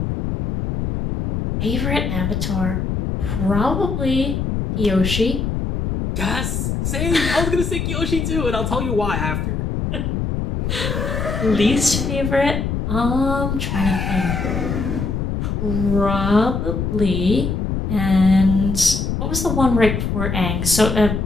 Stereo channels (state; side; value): noise; left; rumble, 1 dB below the sound